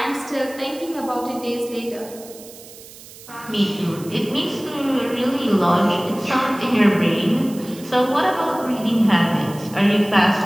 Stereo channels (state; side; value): noise; right; hiss, 18 dB below the sound